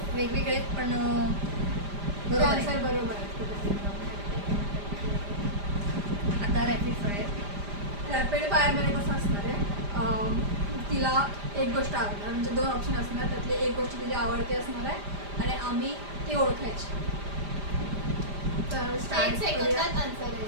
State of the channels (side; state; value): left; late; 5.0 ms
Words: वेगवेगळे आहेत, पण बरोबर आहे. आन्सर बरोबर आहे. आता रॅपिड फायर. रॅपिड फायरमध्ये कसं असणार आहे, तिला एक गोष्ट आवडणार, म्हणजे 2 ऑप्शन असणार, त्यातली एक गोष्ट तिला आवडते असणार आहे आणि आम्ही ती ओळखायची. तर एक स्टार्ट सेकंदात आन्सर